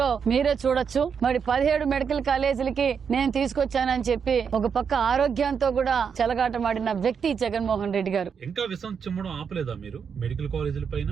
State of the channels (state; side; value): quieter; left; 6.6 dB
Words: మీరే చూడొచ్చు. మరి 17 మెడికల్ కాలేజీలకి నేను తీసుకొచ్చానని చెప్పి ఒక పక్క ఆరోగ్యంతో కూడా చెలగాటమాడిన వ్యక్తి జగన్మోహన్ రెడ్డి గారు. ఇంకా విషం చిమ్మడం ఆపలేదా మీరు మెడికల్ కాలేజీల పైన?